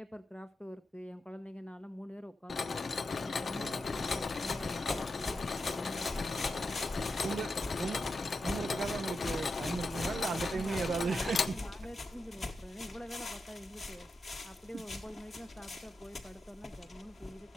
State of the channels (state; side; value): normal; both; correlation 0.88